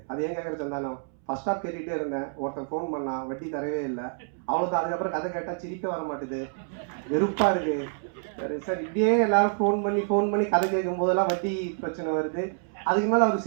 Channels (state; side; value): silent; left; 60 dB below the other